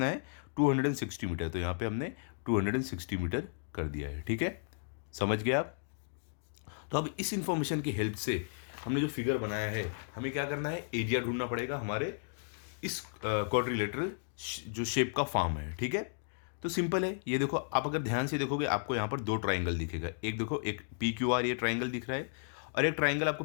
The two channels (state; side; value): silent; right; digital silence